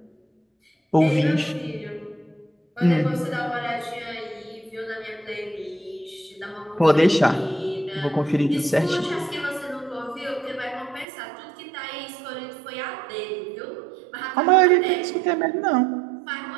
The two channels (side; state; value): left; drops out; at 11.1 s